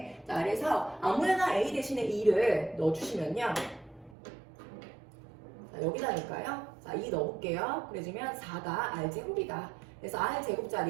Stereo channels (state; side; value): drops out; left; at 4.2 s